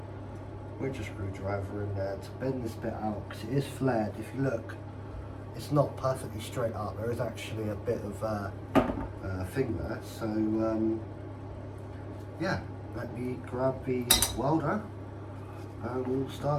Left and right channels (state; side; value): identical; both; correlation 1.00